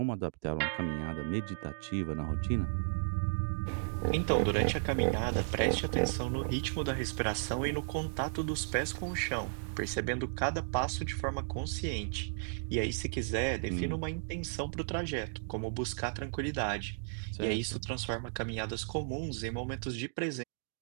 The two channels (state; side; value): silent; left; digital silence